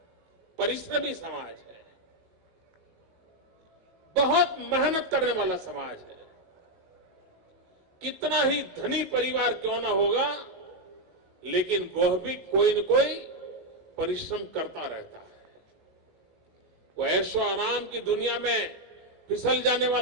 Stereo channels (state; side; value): late; left; 19 ms